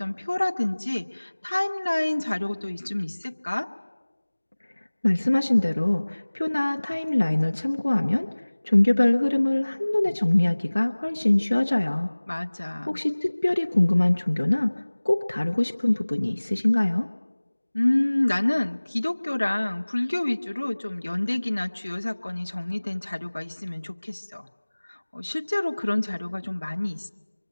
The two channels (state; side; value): inverted; both; correlation -1.00